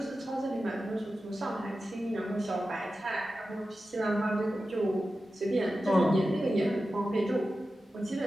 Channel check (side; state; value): both; normal; correlation 0.93